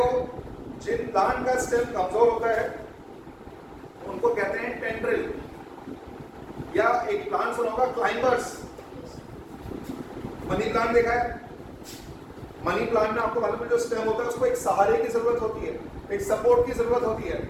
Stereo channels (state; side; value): identical; both; correlation 1.00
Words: जिन प्लांट का स्टेम कमजोर होता है उनको कहते हैं टेंड्रिल, या एक प्लांट सुना होगा क्लाइंबर्स। मनी प्लांट देखा है? मनी प्लांट में आपको मालूम है जो स्टेम होता है उसको एक सहारे की जरूरत होती है, एक सपोर्ट की जरूरत होती है।